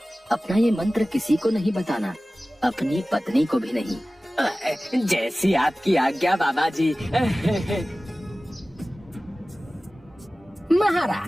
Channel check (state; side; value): normal; both; correlation 0.97